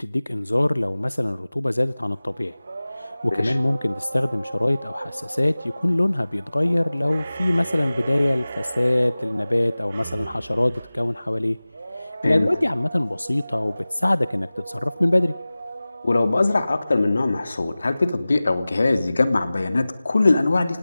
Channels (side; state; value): both; inverted; correlation -0.98